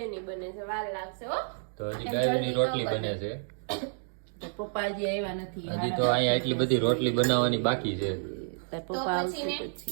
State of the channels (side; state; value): left; silent; digital silence